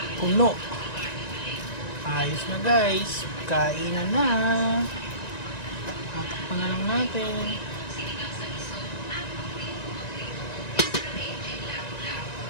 puno. Ayos na guys. Kainan na. Tatakpan na lang natin.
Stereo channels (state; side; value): late; right; 1.9 ms